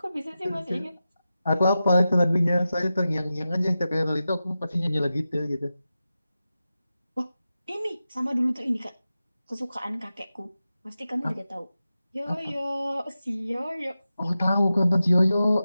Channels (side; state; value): both; inverted; correlation -0.92